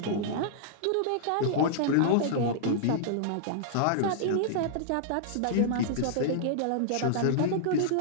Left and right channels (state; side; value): different; both; correlation -0.02